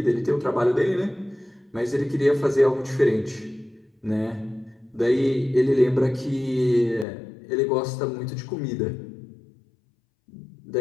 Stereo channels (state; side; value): drops out; right; at 7.1 s